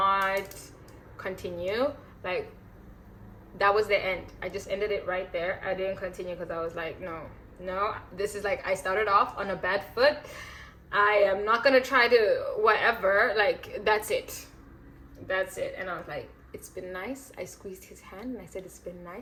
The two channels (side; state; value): both; identical; correlation 1.00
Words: continue. Like, that was the end. I just ended it right there. I didn't continue because I was like, no, this is like, I started off on a bad foot. I am not gonna try to whatever, like, that's it. And I was like, it's been nice. I squeezed his hand and I said, it's been